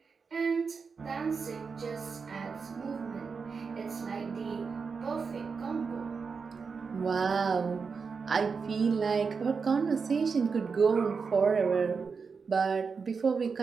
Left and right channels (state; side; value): quieter; left; 5.3 dB